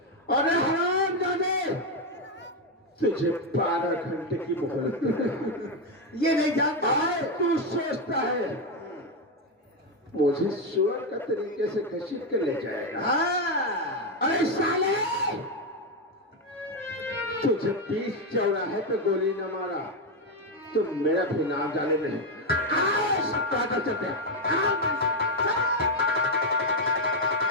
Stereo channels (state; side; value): normal; both; correlation 0.06